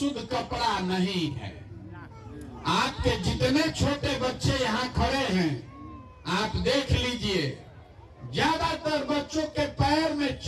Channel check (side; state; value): both; identical; correlation 1.00